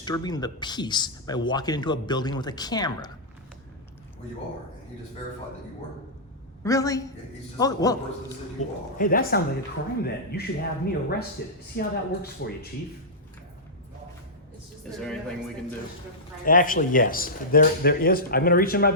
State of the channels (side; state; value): both; normal; correlation -0.12